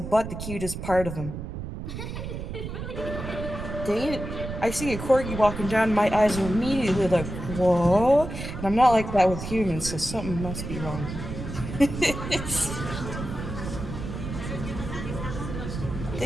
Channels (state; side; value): noise; right; rumble, 7 dB below the sound